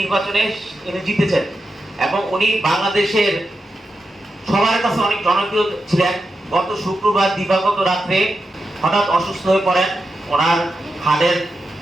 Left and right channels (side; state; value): both; normal; correlation 0.88